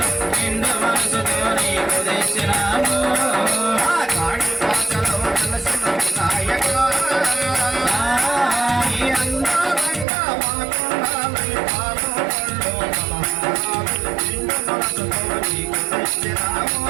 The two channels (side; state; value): left; drops out; at 10.1 s